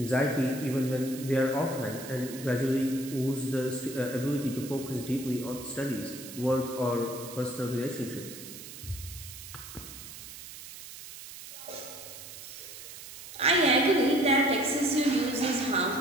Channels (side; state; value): right; noise; hiss, 13 dB below the sound